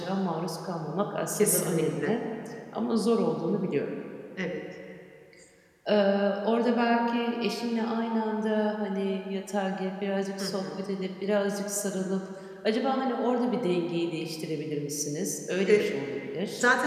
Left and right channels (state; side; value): identical; both; correlation 1.00